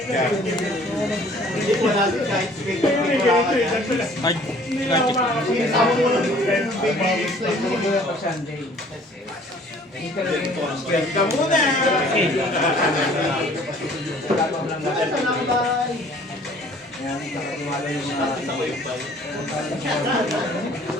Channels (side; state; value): both; normal; correlation 0.54